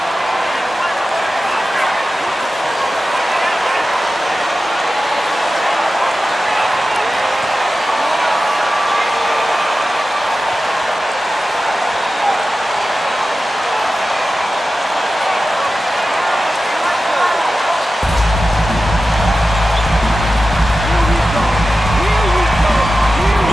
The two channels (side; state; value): both; normal; correlation 0.94